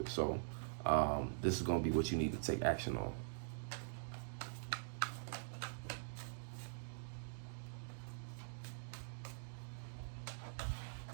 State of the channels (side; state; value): left; silent; digital silence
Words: it. So this is gonna be what you need to take action on.